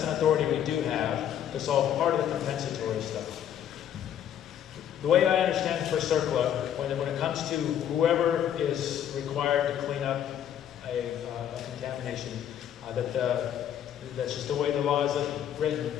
an authority we do have to solve part of the compensatory stuff. The way I understand for CERCLA, when it comes to whoever is required to clean up a contamination, that's just the way the law is written,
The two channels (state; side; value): quieter; right; 9.9 dB